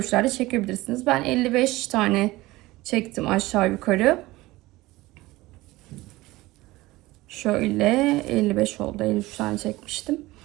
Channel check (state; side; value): quieter; left; 19.1 dB